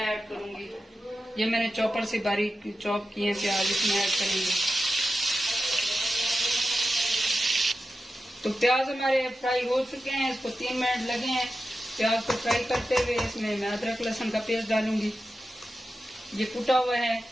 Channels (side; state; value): both; normal; correlation 0.92